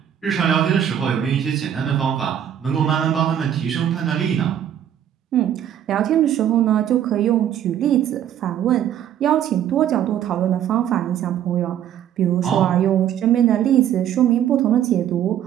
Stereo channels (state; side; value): quieter; left; 10.2 dB